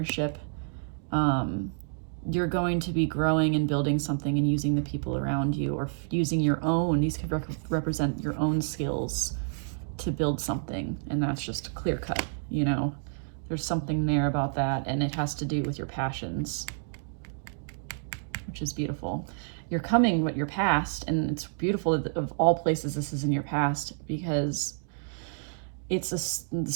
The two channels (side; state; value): left; silent; digital silence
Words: You're going to be growing and building something and using the people around you, or using your own, these could represent your own skills to build something. And that's just clear cut, you know, there's something there about that. And it has to do with your passions, which is beautiful. You're coming with your past, and it's beautiful that of all places this is in your past, because it's the